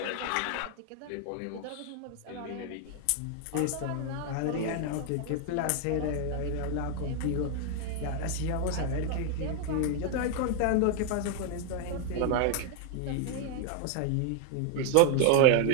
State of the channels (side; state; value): both; different; correlation 0.00